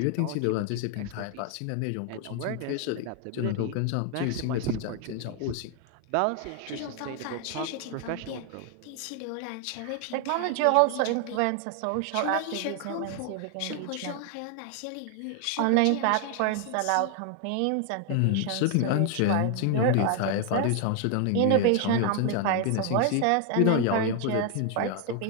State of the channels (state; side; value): different; both; correlation 0.00